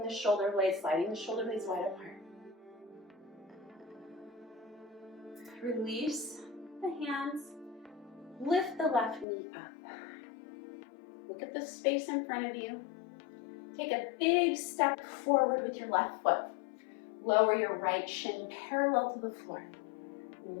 the shoulder blades, sliding the shoulder blades wide apart. Release the hands. Lift the left knee up. Look at the space in front of you. Take a big step forward with your left foot. Lower your right shin parallel to the floor.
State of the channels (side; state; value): right; drops out; at 9.2 s